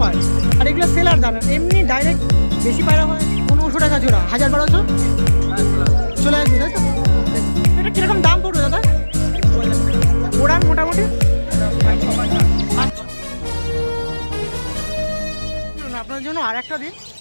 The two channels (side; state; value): both; inverted; correlation -1.00